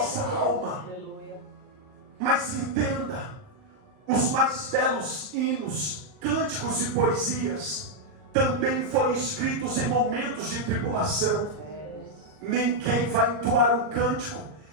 alma. Mas entenda, os mais belos hinos, cânticos e poesias também foram escritos em momentos de tribulação. Ninguém vai entoar um cântico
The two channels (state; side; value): late; left; 39 ms